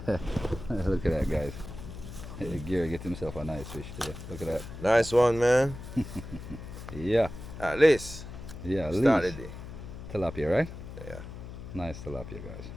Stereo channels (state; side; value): noise; left; hum, 11 dB below the sound